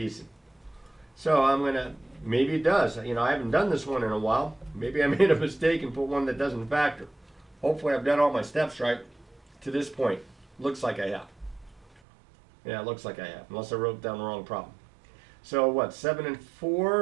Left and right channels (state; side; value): drops out; left; at 12.0 s